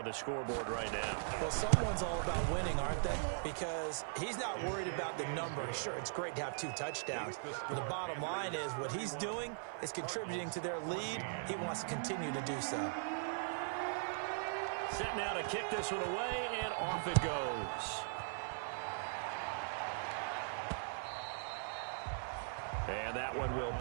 the scoreboard right now. Well, someone's all about winning, aren't they? Because he's not worried about the number. Sure, it's great to have 2 touchdowns. But the bottom line is what he's doing is contributing to their lead. He wants to continue to do so. Set now to kick this one away, and off it goes. And that one will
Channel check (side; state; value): left; silent; 51 dB below the other